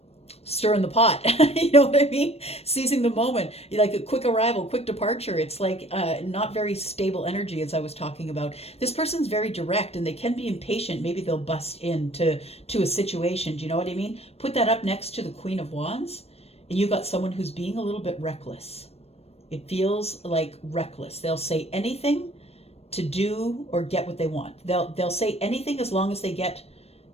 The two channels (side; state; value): right; late; 0.30 ms